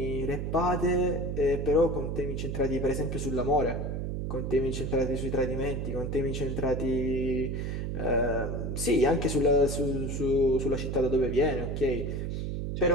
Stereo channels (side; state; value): right; noise; hum, 3 dB below the sound